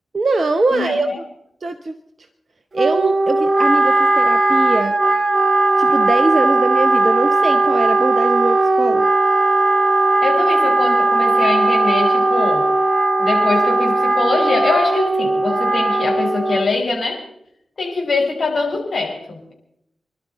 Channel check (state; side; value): normal; both; correlation 0.93